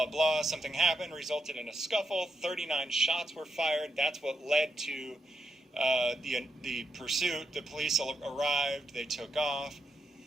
blah. Something happened, resulted in a scuffle. 39 shots were fired. That's what led to the pursuit. The police arrived. They took off.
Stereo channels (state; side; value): normal; both; correlation 0.83